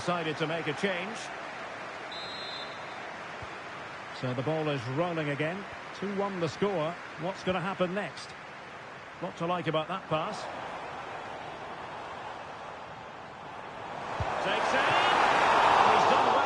to make a change. So the ball is rolling again. 2-1 the score. What's going to happen next? Lot to like about that pass. Takes it. He's done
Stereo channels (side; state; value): both; identical; correlation 1.00